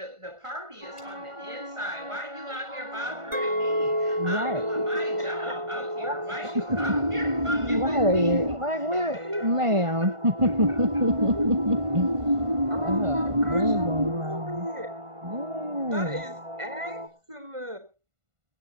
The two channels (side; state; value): left; late; 1.5 ms